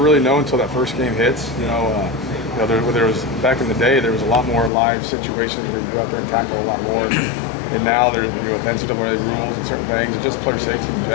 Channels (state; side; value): drops out; right; at 4.7 s